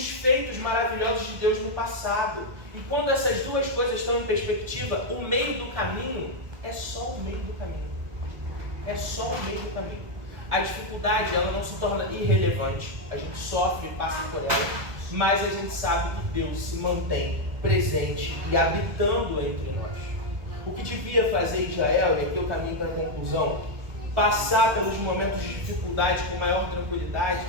feitos maravilhosos de Deus no passado. E quando essas duas coisas estão em perspectiva, o meio do caminho é só o meio do caminho. É só o meio do caminho. A dificuldade, ela não se torna irrelevante. A gente sofre e passa por ela, mas a gente sabe que Deus se mantém presente e habitando entre nós. O que devia fazer Israel, e aqui eu caminho para a conclusão, passar pelos momentos de dificuldade com maior tranquilidade,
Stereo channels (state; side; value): late; left; 1.7 ms